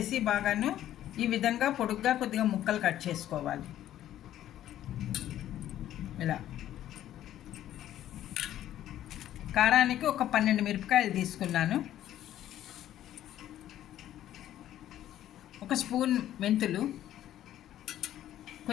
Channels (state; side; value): quieter; right; 12.3 dB